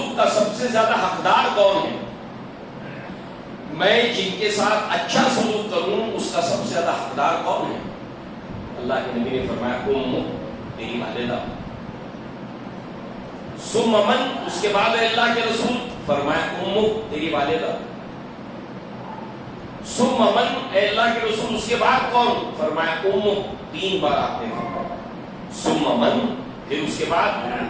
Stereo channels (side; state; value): both; identical; correlation 1.00